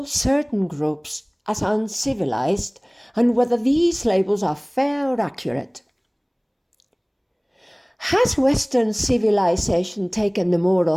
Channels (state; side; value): identical; both; correlation 1.00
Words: certain groups as uncivilized and whether these labels are fair or accurate. Has Western civilization taken the moral